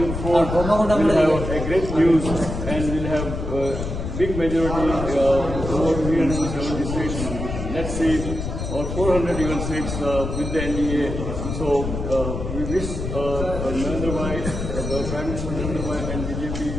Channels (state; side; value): noise; left; rumble, 5 dB below the sound